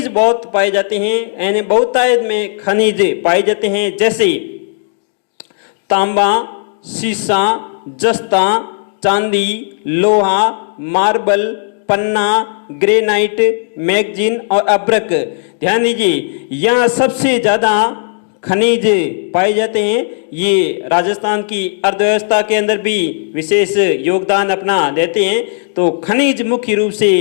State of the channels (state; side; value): silent; right; digital silence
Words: बहुत पाए जाते हैं, यानी बहुतायत में खनिज पाए जाते हैं, जैसे तांबा, सीसा, जस्ता, चांदी, लोहा, मार्बल, पन्ना, ग्रेनाइट, मैगजीन और अब्रक। ध्यान दीजिए, यहाँ सबसे ज्यादा खनिज पाए जाते हैं। ये राजस्थान की अर्थव्यवस्था के अंदर भी विशेष योगदान अपना देते हैं। तो खनिज मुख्य रूप से